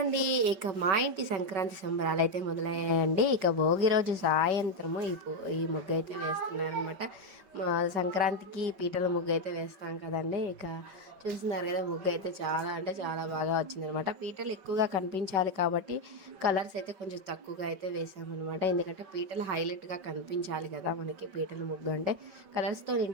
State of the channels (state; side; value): late; left; 5.2 ms